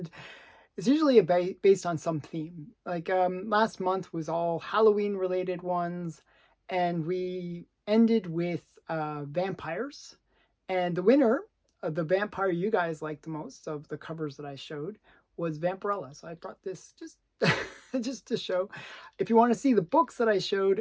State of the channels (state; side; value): identical; both; correlation 1.00